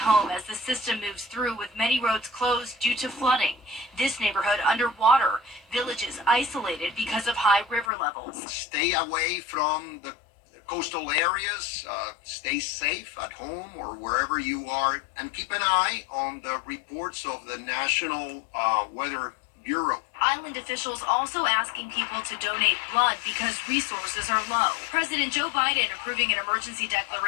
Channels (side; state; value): right; drops out; at 7.9 s